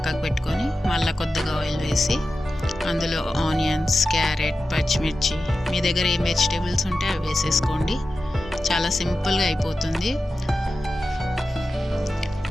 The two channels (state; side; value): normal; both; correlation 0.92